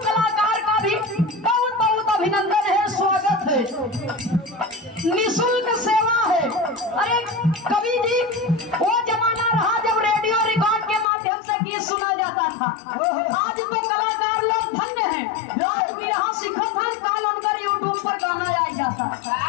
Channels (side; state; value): right; drops out; at 11.1 s